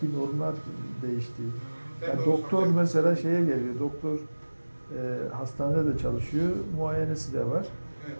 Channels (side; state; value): both; inverted; correlation -1.00